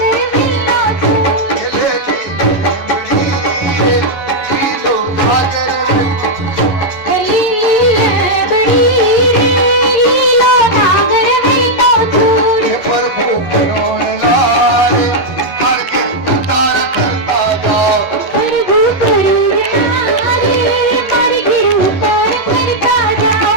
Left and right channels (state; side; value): late; right; 11 ms